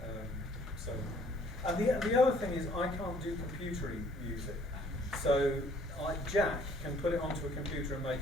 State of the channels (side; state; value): both; normal; correlation 0.59